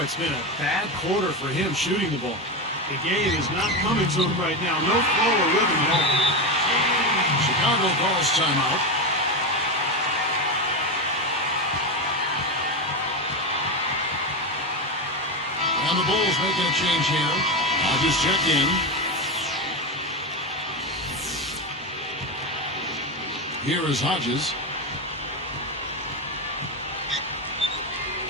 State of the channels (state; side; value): normal; both; correlation 0.15